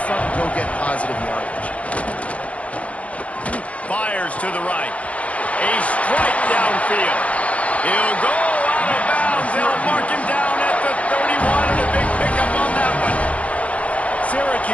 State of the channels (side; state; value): right; late; 0.065 ms